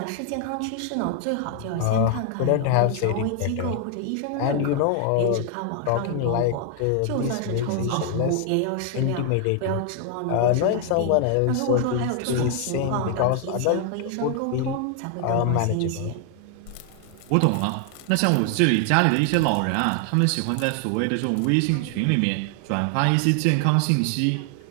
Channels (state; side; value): different; both; correlation 0.00